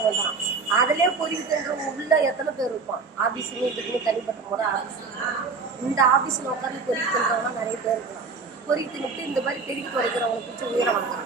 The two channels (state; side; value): quieter; left; 4.6 dB